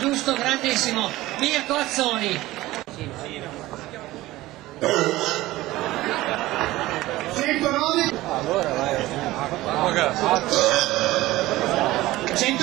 grandissimo. Mirko Azzoni. 109.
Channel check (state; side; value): quieter; left; 17.4 dB